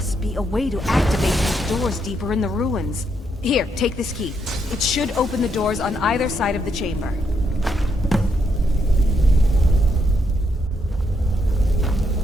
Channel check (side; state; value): both; normal; correlation 0.77